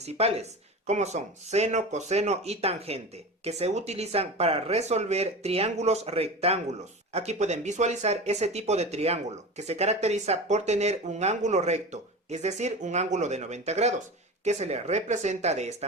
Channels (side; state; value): both; normal; correlation 0.30